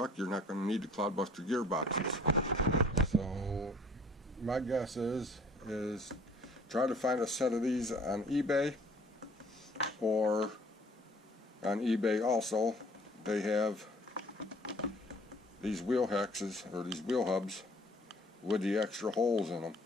you're not going to need the Clod Buster gearboxes. So my guess is try to find a set of these on eBay, or on eBay also they have these wheel hexes, or these wheel hubs with the extra holes in them.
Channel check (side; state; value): both; normal; correlation 0.55